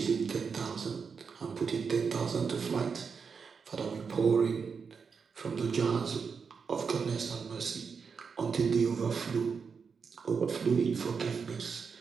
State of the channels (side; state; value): left; quieter; 5.7 dB